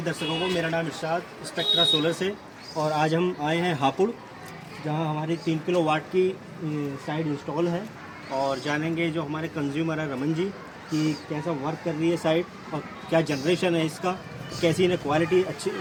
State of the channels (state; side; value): identical; both; correlation 1.00